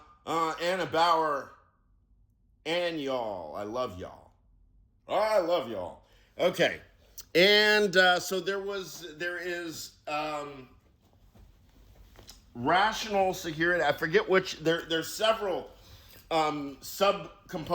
Anna Bauer, and y'all. I love y'all. I love y'all. Okay. And so there is rational security. I forget which. There's several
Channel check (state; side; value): identical; both; correlation 1.00